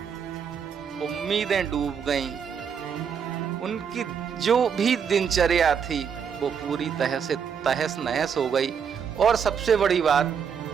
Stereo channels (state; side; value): quieter; left; 7.1 dB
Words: उम्मीदें डूब गईं, उनकी जो भी दिनचर्या थी वो पूरी तरह से तहस नहस हो गई। और सबसे बड़ी बात,